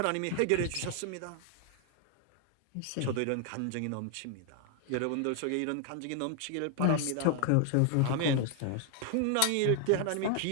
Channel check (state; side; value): different; both; correlation 0.00